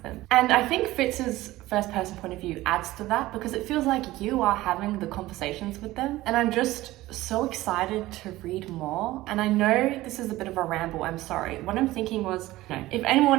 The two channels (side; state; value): left; quieter; 17.3 dB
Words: them. And I think Fitz's first person point of view adds to that, because it feels like you are having the conversations with them. And I'm just so excited to read more. And I know this is a bit of a ramble, I'm sorry. What I'm thinking was, if